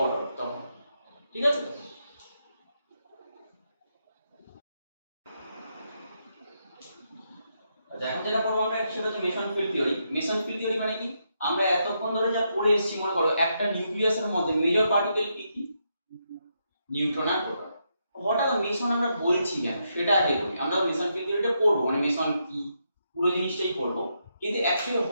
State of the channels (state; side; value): inverted; both; correlation -0.81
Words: অর্ডার তখন। ঠিক আছে? আচ্ছা, এখন যেটা পড়বো আমরা সেটা হচ্ছে Mason field theory. Mason field theory মানে কি? আমরা এতক্ষণ ধরে যা পড়ে এসেছি, মনে করো একটা নিউক্লিয়াসের মধ্যে মেজর পার্টিকেল কি কি? নিউট্রন আর প্রোটন। হঠাৎ মেসন আমরা বলছি কেন সেটা আগে বলি। আমরা মেসন ফিল্ড থিওরিটা পড়বো, মানে মেসন কি পুরো জিনিসটাই পড়বো, কিন্তু অ্যাকচুয়ালি